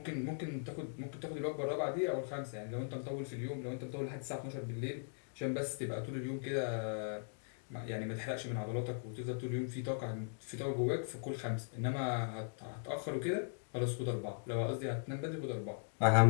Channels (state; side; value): silent; right; digital silence